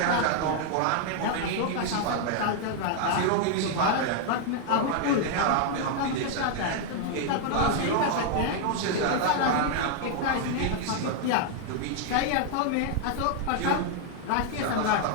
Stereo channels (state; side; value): different; both; correlation 0.00